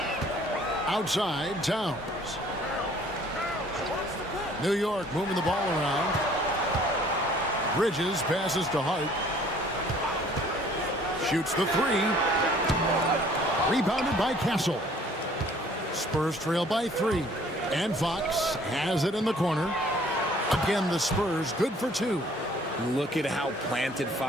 Outside, Towns. New York moving the ball around. Bridges passes to Hart. Shoots the 3. Rebounded by Castle. Spurs trail by 3. And Fox has it in the corner. Again, the Spurs good for 2. Look at how planted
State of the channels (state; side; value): normal; both; correlation 0.56